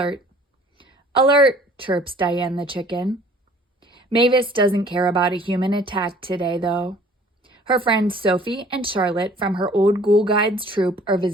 Alert, chirps Diane the chicken. Mavis doesn't care about a human attack today, though. Her friends Sophie and Charlotte from her old Ghoul Guides troupe are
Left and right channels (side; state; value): both; normal; correlation 0.53